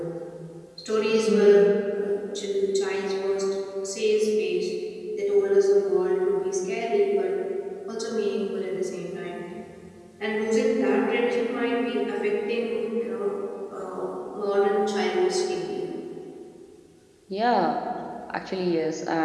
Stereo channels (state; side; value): identical; both; correlation 1.00